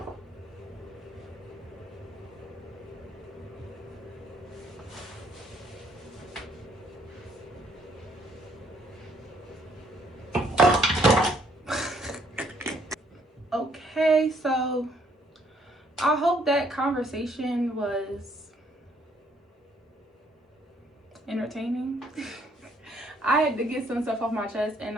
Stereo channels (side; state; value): both; normal; correlation 0.66